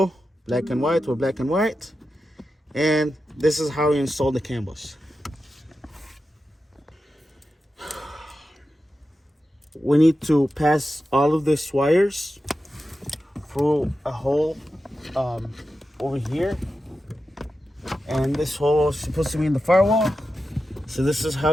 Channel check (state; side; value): normal; both; correlation 0.91